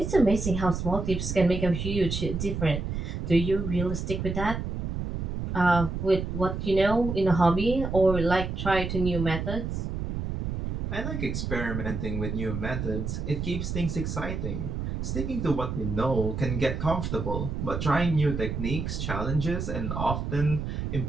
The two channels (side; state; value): right; noise; rumble, 3 dB below the sound